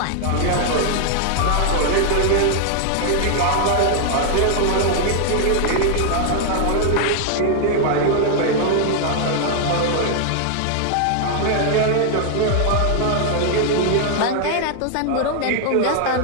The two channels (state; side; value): different; both; correlation 0.00